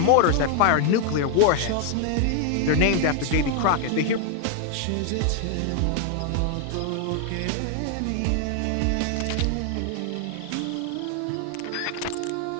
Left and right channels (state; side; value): different; both; correlation 0.00